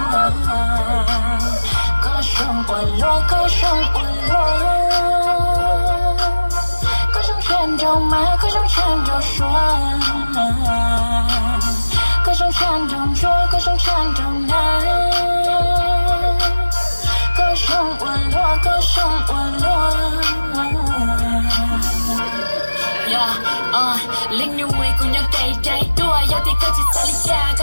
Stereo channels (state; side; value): inverted; both; correlation -1.00